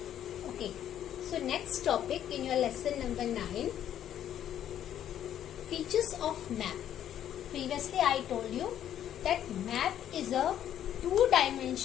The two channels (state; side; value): quieter; right; 10.6 dB